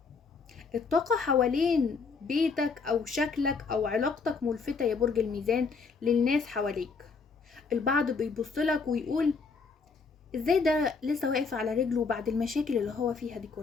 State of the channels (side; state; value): right; quieter; 4.9 dB